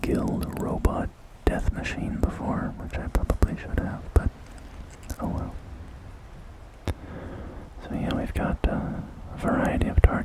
guild robot death machine before, which I probably should have, but oh well. So yeah, we've got a variety of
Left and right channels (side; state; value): both; identical; correlation 1.00